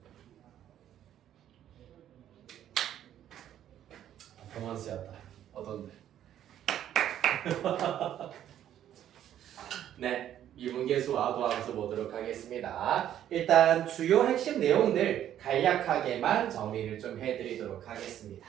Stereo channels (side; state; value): left; quieter; 11.0 dB